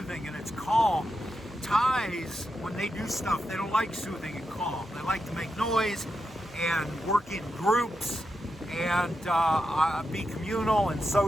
and it's calm. Thais, when they do stuff, they don't like soothing and calm. They like to make noise and work in groups and be communal and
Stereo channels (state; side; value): normal; both; correlation 0.87